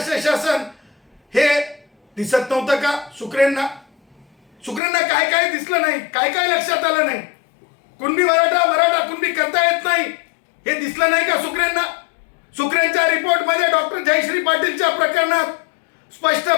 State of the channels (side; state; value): right; drops out; at 4.8 s